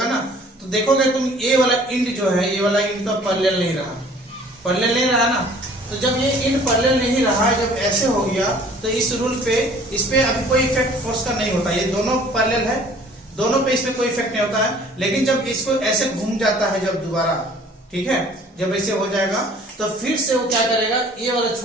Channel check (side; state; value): both; normal; correlation 0.53